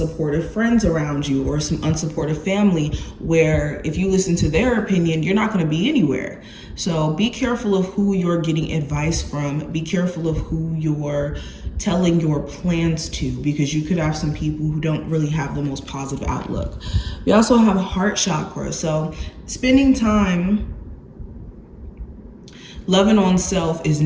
friends around you or some unsupportive family where if you listen to their opinion, you're not going to be anywhere. So be careful of who you're getting advice from. Be careful of who you're telling your plans to, because you could have some people who don't really have the most positive outlook. We also have heart chakra. So spending time loving on self is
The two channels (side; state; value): both; identical; correlation 1.00